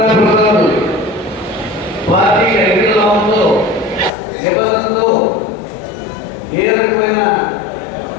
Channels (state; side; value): drops out; right; at 4.1 s